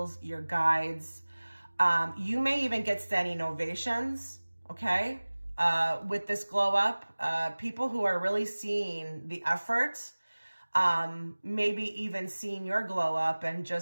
your guides. You may even get standing ovations, okay? With this glow up, people who are really seeing the effort, maybe even seeing your glow up and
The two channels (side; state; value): both; inverted; correlation -1.00